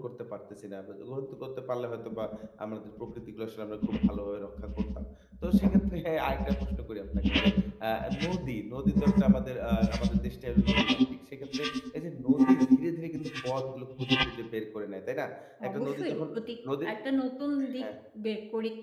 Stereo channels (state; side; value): identical; both; correlation 1.00